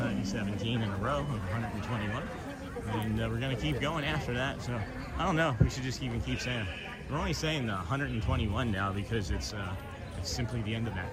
in a row of 121, and we're gonna keep going after that. So I don't know. We should just even keep saying it. We're only saying the 121 now because it's simply the end of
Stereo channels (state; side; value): identical; both; correlation 1.00